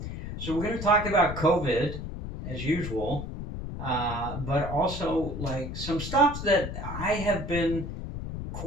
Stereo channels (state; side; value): noise; left; rumble, 7 dB below the sound